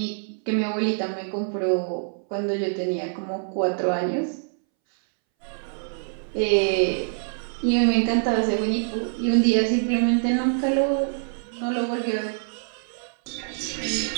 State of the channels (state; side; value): silent; left; 62 dB below the other